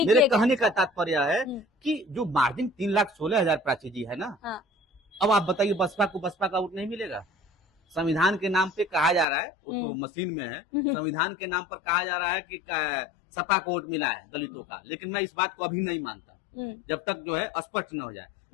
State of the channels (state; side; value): drops out; right; at 9.2 s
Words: मेरे कहने का तात्पर्य है कि जो मार्जिन 3,16,000 प्राची जी है ना, अब आप बताइए बसपा का वोट नहीं मिलेगा। संविधान के नाम पे कहा जा रहा है, वो तो मशीन में है, संविधान के नाम पर कहा जा रहा है कि सपा को वोट मिला है दलितों का, लेकिन मैं इस बात को अभी नहीं मानता जब तक जो है स्पष्ट न हो जाए।